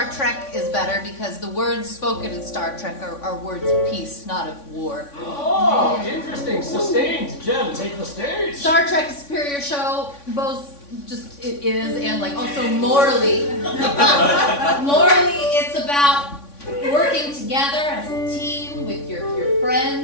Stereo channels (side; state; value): right; late; 3.5 ms